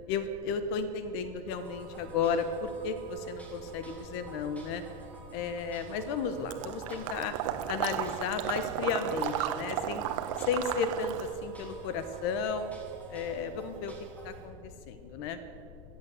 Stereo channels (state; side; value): noise; left; rumble, 17 dB below the sound